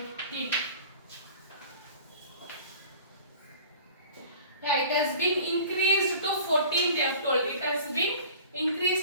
Yeah, it has been increased to 14. They have told it has been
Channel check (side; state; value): both; inverted; correlation -0.45